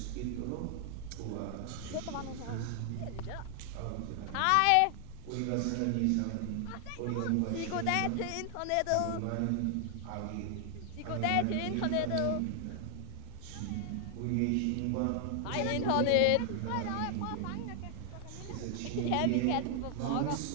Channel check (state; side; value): different; both; correlation 0.00